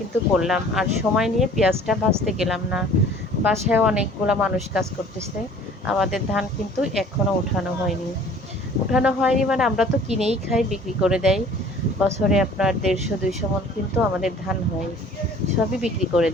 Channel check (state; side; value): normal; both; correlation 0.50